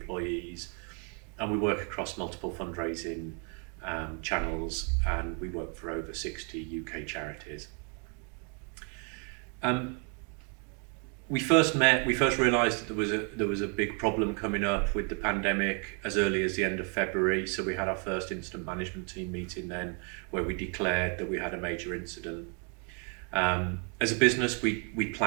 and we work across multiple fundraising channels, and we work for over 60 UK charities. We first realised that there was a big problem coming up with the pandemic as early as the end of February. So we had our first incident management team meeting then, where we declared that we had a major incident. As a business, we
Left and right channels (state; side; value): quieter; left; 38.4 dB